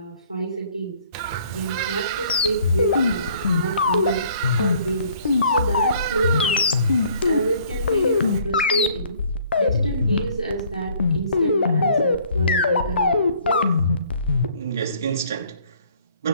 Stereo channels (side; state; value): both; inverted; correlation -0.58